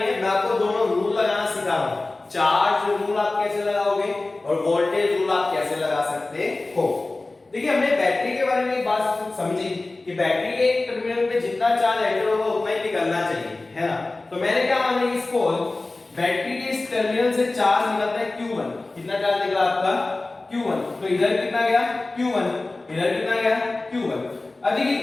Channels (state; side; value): quieter; right; 3.2 dB